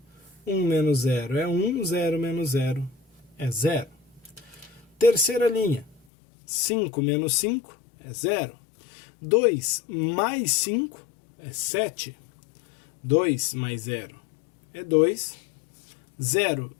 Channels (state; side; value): drops out; right; at 6.0 s